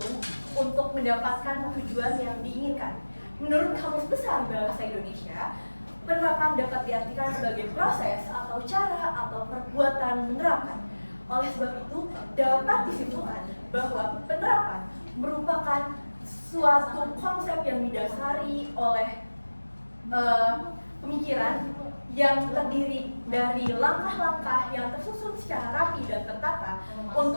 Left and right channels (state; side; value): inverted; both; correlation -1.00